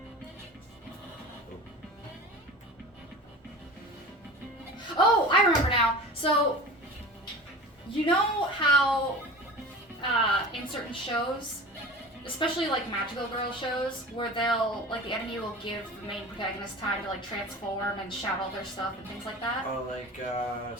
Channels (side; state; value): both; normal; correlation 0.36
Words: Oh, I remember now. So, you know how in certain shows, especially like magical girl shows, where they'll, like, the enemy will give the main protagonist time to, like, transform and shout all their stuff and things like that? Oh, like